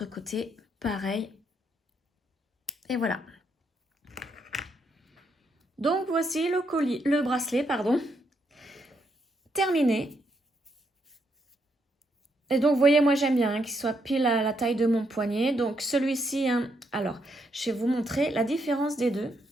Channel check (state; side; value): normal; both; correlation 0.77